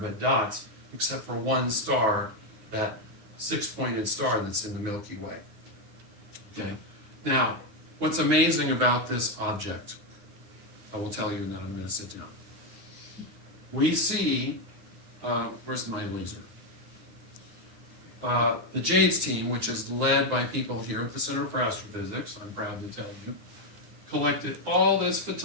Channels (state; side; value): late; left; 9.6 ms